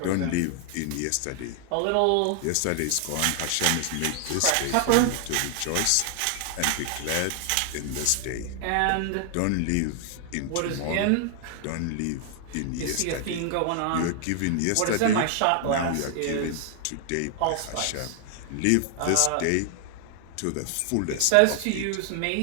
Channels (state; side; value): different; both; correlation 0.00